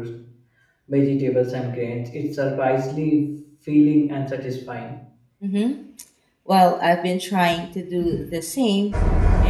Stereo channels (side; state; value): both; identical; correlation 1.00